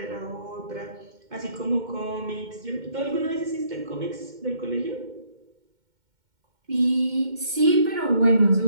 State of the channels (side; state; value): left; late; 2.1 ms